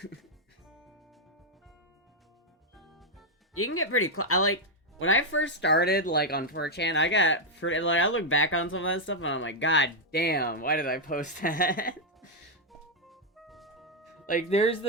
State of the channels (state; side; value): normal; both; correlation -0.01